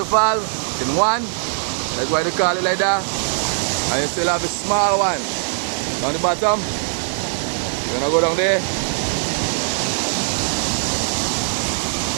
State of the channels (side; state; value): left; silent; 65 dB below the other